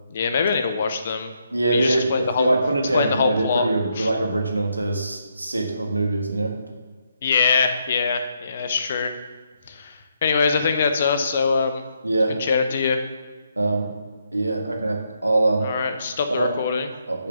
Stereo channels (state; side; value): inverted; both; correlation -0.77